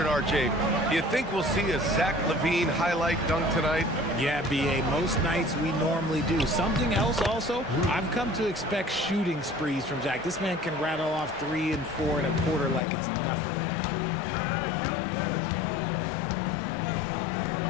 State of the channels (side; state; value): right; drops out; at 12.8 s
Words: RJ, do you think we'll see a Zach Levine highlight dunk tonight? Yeah, B.A., most nights we normally do. Something else also, I've come to expect shooting sprees from Zach. This man can rattle off 3 and 4 and a quarter like it's nothing.